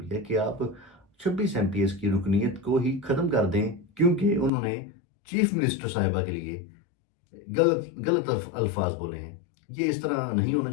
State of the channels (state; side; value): drops out; right; at 4.5 s